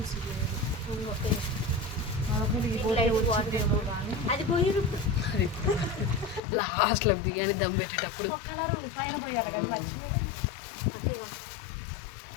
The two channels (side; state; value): right; drops out; at 6.4 s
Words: అది పోయి లాస్ట్లో బిర్యానీ దమ్ పెట్టేటప్పుడు కలర్ పైన పోయాలి కదా, మర్చిపోయి